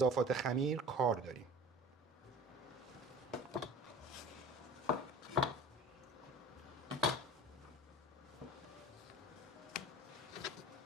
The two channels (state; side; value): normal; both; correlation 0.40